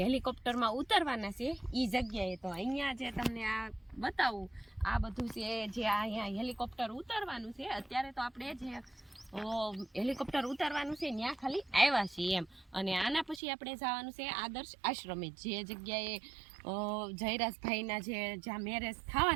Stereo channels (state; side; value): drops out; left; at 13.4 s